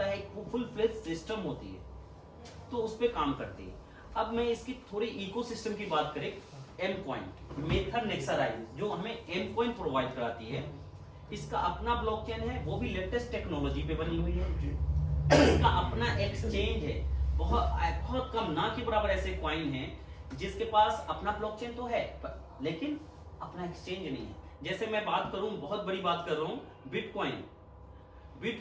है, एक फुल फ्लेज सिस्टम होती है तो उस पे काम करती है। अब मैं इसकी थोड़ी इकोसिस्टम की बात करें, एम कॉइन, मेथर नेक्सराइज जो हमें एम कॉइन प्रोवाइड कराती है, इसका अपना ब्लॉकचेन है, वो भी लेटेस्ट टेक्नोलॉजी पे बनी हुई है। इसका अपना एक्सचेंज है, बहुत कम, ना के बराबर ऐसे कॉइन हैं जिसके पास अपना ब्लॉकचेन तो है लेकिन अपना एक्सचेंज नहीं है। जैसे मैं बात करूं, बहुत बड़ी बात कर रहा हूं,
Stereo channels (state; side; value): identical; both; correlation 1.00